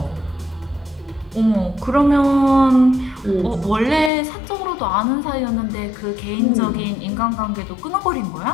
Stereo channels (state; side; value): drops out; right; at 4.1 s